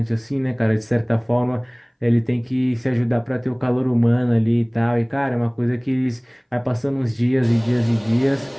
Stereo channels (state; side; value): identical; both; correlation 1.00